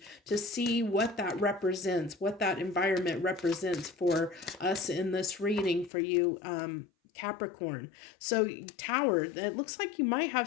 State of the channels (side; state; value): right; drops out; at 5.9 s